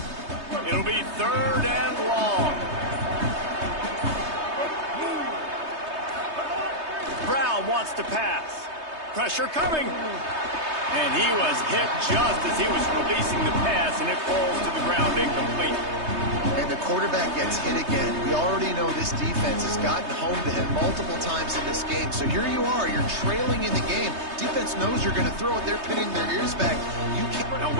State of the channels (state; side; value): late; left; 3.2 ms